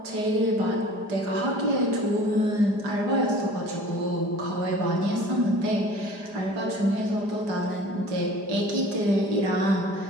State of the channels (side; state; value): left; late; 5.0 ms